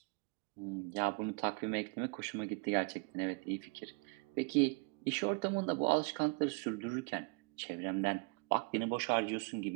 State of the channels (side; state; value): left; quieter; 32.0 dB